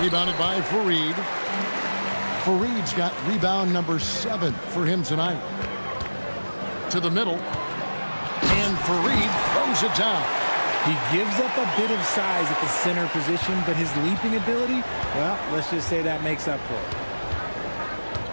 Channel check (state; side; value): inverted; both; correlation -1.00